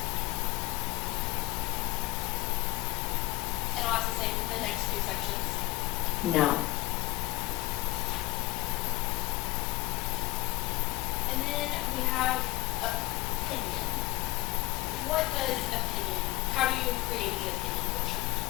And I'll ask the same for the next two sections. No. And then we have opinion. What does opinion, how do you create the opinion portion?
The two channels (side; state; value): right; quieter; 19.6 dB